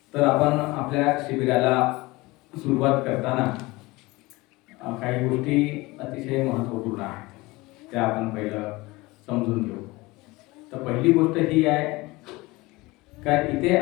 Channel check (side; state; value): right; quieter; 21.8 dB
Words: तर आपण आपल्या शिबिराला सुरुवात करताना काही गोष्टी अतिशय महत्त्वपूर्ण आहेत, त्या आपण पहिलं समजून घेऊ। तर पहिली गोष्ट ही आहे का इथे